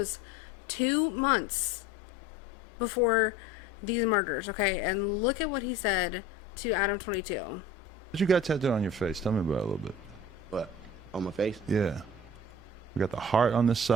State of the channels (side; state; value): both; normal; correlation 0.42